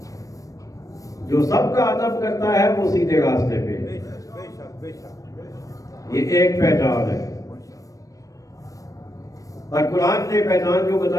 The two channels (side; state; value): right; late; 0.16 ms